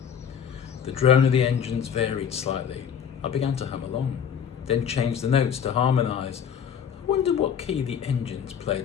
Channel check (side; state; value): right; quieter; 8.0 dB